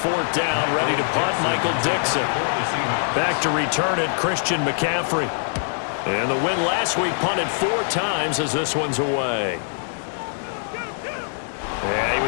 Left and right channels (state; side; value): silent; right; digital silence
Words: fourth down, ready to punt, Michael Dixon. Back to return it, Christian McCaffrey. And the win last week punted 4 times as this one's away. Yeah, he